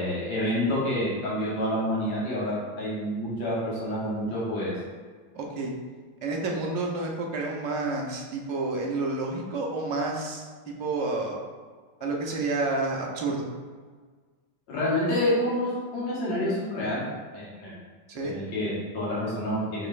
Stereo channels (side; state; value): right; late; 2.7 ms